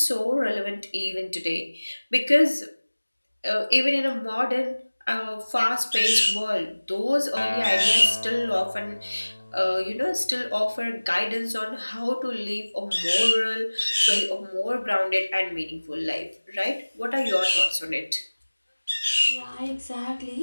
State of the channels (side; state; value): both; inverted; correlation -1.00